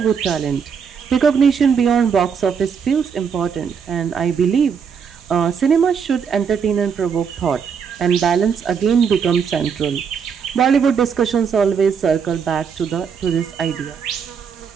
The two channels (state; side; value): quieter; left; 6.7 dB